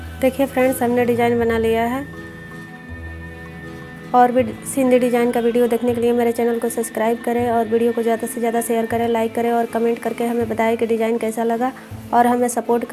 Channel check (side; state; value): both; identical; correlation 1.00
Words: देखिए फ्रेंड्स, हमने डिज़ाइन बना लिया है। और भी सिंधी डिज़ाइन का वीडियो देखने के लिए मेरे चैनल को सब्सक्राइब करें और वीडियो को ज़्यादा से ज़्यादा शेयर करें, लाइक करें और कमेंट करके हमें बताएं कि डिज़ाइन कैसा लगा और हमें सपोर्ट